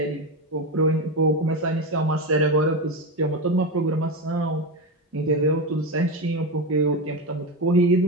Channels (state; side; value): normal; both; correlation 0.16